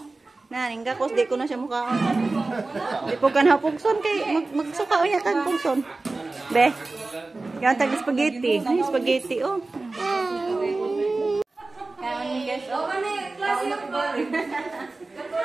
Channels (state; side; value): quieter; left; 3.4 dB